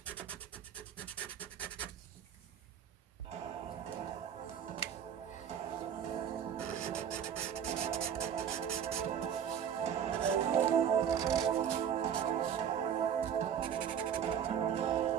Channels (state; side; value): quieter; left; 8.6 dB